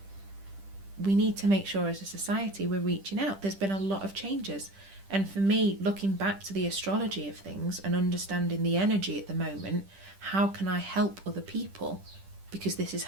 We need to make sure as a society we're reaching out. There's been a lot of changes. And for me, looking back to the astrology of things and understanding the energy at the moment, how can I help other people? Because this is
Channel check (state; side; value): late; left; 10 ms